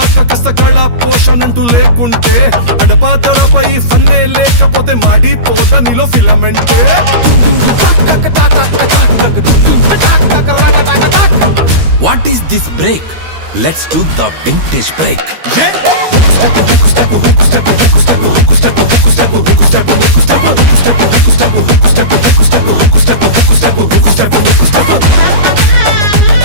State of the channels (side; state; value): left; late; 13 ms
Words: కష్టకళ పోషణంటూ లేకుంటే అడపాదడపై ఫన్నే లేకపోతే మాడిపోత నీలో ఫిలమెంటే what is this break? Let's do the vintage break.